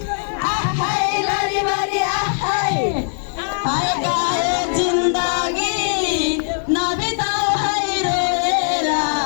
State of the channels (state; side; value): silent; right; 58 dB below the other